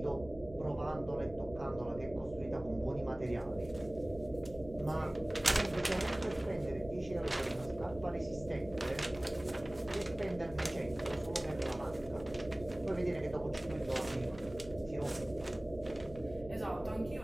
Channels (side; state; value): left; noise; hum, 16 dB below the sound